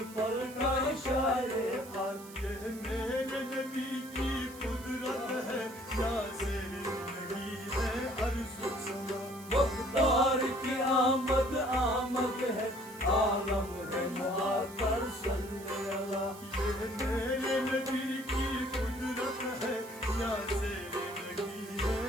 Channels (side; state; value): right; noise; hiss, 18 dB below the sound